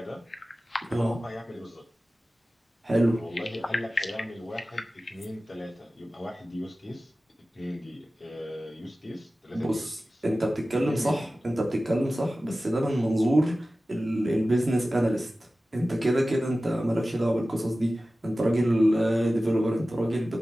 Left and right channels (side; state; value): both; normal; correlation 0.96